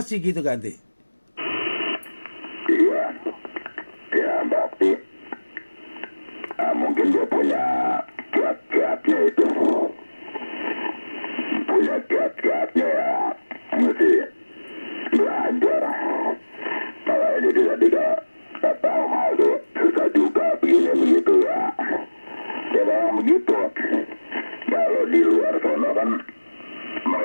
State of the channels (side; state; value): both; inverted; correlation -1.00